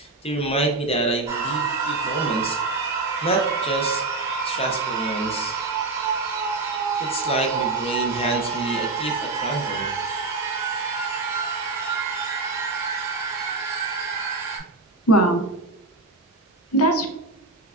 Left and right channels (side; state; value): left; quieter; 3.3 dB